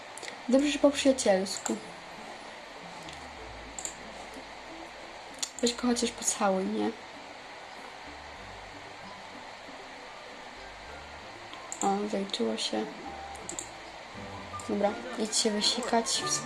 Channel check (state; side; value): identical; both; correlation 1.00